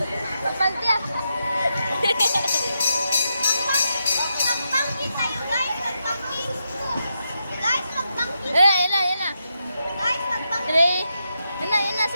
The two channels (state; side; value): inverted; both; correlation -0.84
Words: Pagpaltiya. Magpangkin tayo, guys. Magpangkin. Guys, magpangkin. Yan na. Guys, magpangkin. Three. Yan na